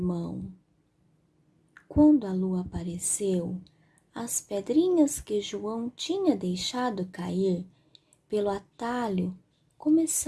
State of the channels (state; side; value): identical; both; correlation 1.00